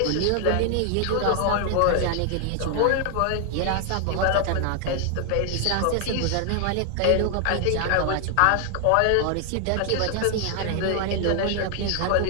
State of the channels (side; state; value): both; different; correlation 0.00